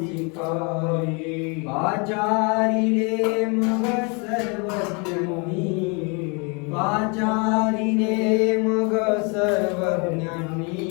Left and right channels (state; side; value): quieter; right; 32.8 dB